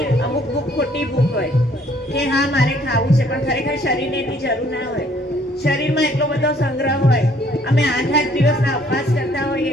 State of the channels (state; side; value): normal; both; correlation 0.62